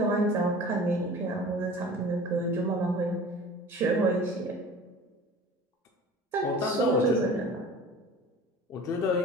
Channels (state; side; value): normal; both; correlation 0.41